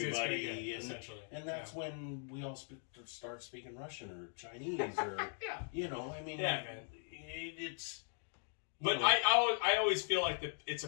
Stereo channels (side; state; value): right; silent; 51 dB below the other